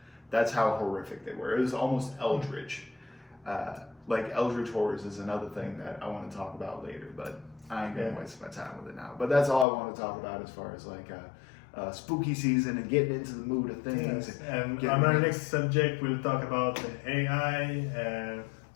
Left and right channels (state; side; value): drops out; right; at 9.7 s